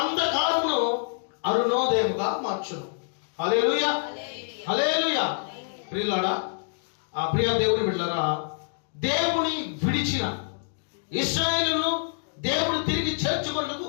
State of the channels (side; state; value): right; silent; digital silence